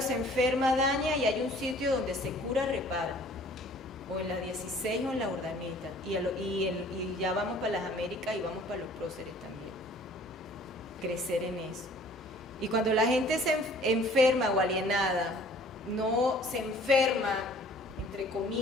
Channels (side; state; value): both; normal; correlation 0.53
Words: se enferma, daña, y hay un sitio donde se cura, repara. O en la 16 o en la Urdaneta. Y ya vamos para las Américas y vamos para los próceres también. Crecer en eso. Y cuando la gente se enferma o alienada, no se enferma, entre